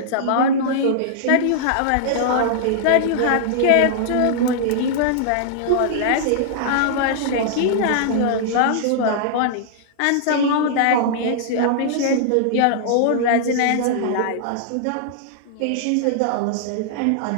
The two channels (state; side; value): different; both; correlation -0.01